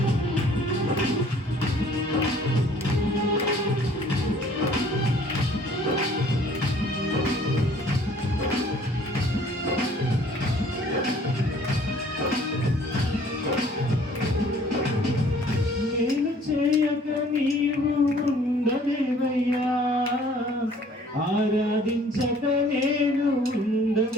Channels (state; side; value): normal; both; correlation 0.55